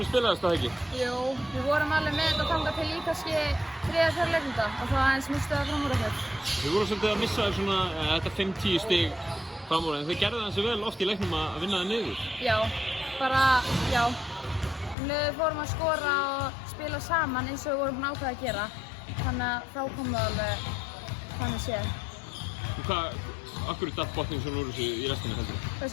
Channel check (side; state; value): right; drops out; at 15.0 s